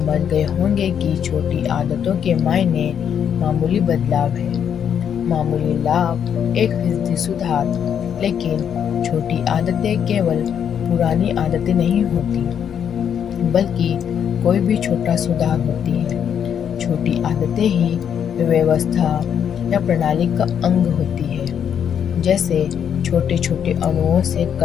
गए होंगे कि छोटी आदतों के मायने मामूली बदलाव है, मामूली लाभ, 1% सुधार। लेकिन छोटी आदतें केवल पुरानी आदतें नहीं होती, बल्कि कोई भी छोटा सुधार होती है। छोटी आदतें ही व्यवस्था या प्रणाली का अंग होती है। जैसे छोटे छोटे अणुओं से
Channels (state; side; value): quieter; right; 8.4 dB